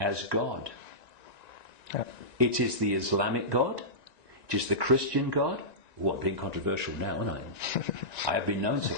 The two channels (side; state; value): right; late; 1.9 ms